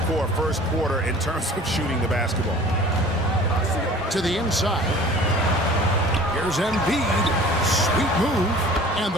for a first quarter in terms of shooting the basketball. to the inside. Here's Embiid. Sweet move. And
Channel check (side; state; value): both; normal; correlation 0.46